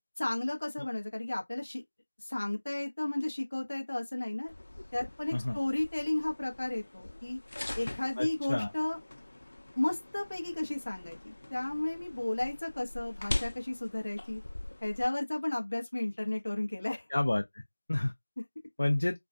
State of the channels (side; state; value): both; inverted; correlation -1.00